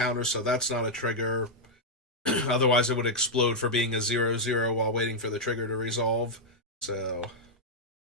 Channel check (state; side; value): normal; both; correlation -0.03